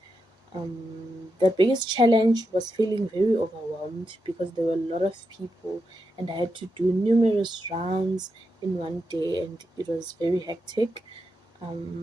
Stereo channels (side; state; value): both; normal; correlation 0.86